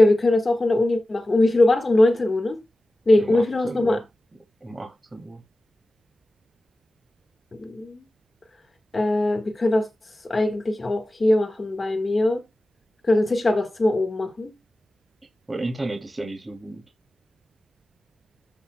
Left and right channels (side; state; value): both; normal; correlation 0.95